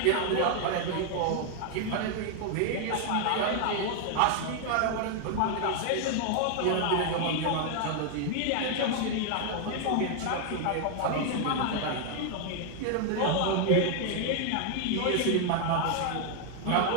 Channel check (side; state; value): both; different; correlation 0.00